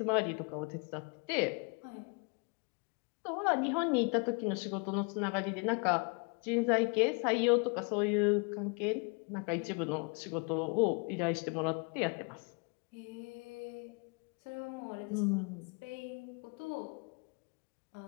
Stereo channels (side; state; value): right; quieter; 34.2 dB